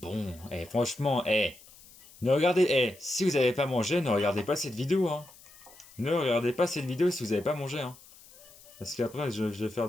Eh, franchement, ne regardez, si vous n'avez pas mangé, ne regardez pas cette vidéo, hein. Ne regardez pas cette vidéo si vous n'avez pas mangé, hein. Parce qu'après, je vais faire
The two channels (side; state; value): left; noise; hiss, 23 dB below the sound